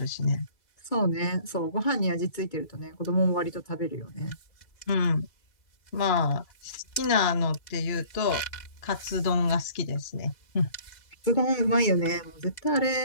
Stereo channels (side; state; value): right; late; 2.3 ms